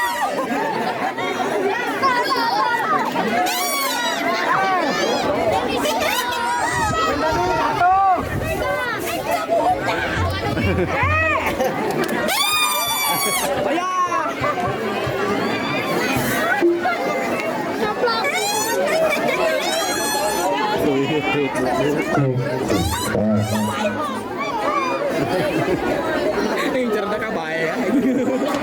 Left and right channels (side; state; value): both; identical; correlation 1.00